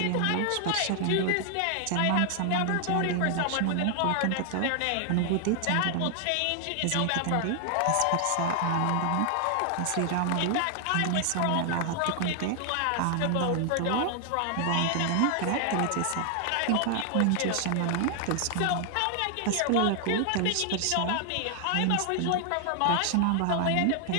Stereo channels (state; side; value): different; both; correlation 0.00